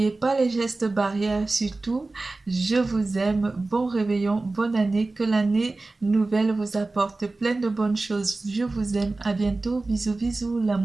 pas les gestes barrières, surtout. Je vous aime. Bon réveillon, bonne année. Que l'année nouvelle vous apporte plein de bonnes choses. Je vous aime. À bientôt. Bisous, bisous.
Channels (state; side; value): quieter; left; 3.3 dB